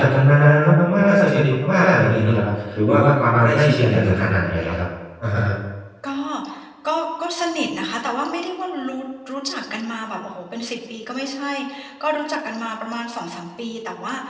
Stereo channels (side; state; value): both; identical; correlation 1.00